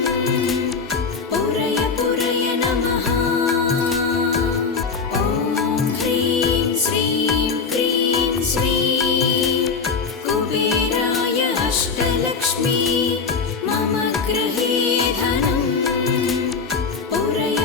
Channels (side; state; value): right; quieter; 5.2 dB